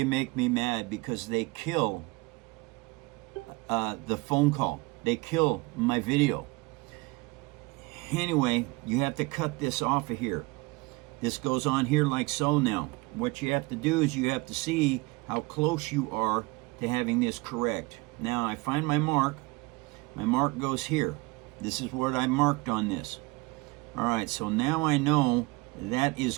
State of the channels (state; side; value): quieter; left; 24.8 dB